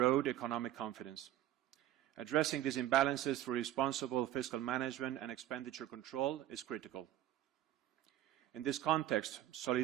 economic confidence. Addressing these imbalances through responsible fiscal management and expenditure control is critical. In this context,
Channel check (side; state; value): left; quieter; 12.9 dB